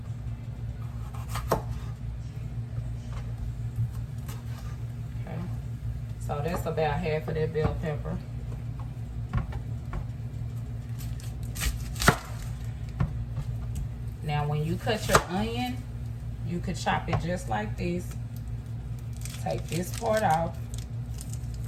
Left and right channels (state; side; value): identical; both; correlation 1.00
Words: Okay, so that's about half of that bell pepper. Now when you cut your onion, you could chop it just like this. Take this part off.